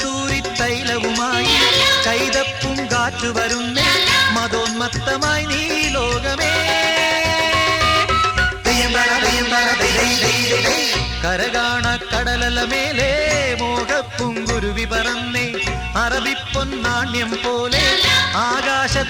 തൈലവുമായി കൈതപ്പും കാറ്റു വരുന്നേ മതോന്മത്തമായി നീ ലോകമേ കരകാണ കടലലമേലെ മോഹപ്പൂങ്കുരുവി പറന്നേ അറബിപ്പൊന്നാണ്യം പോലെ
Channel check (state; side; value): identical; both; correlation 1.00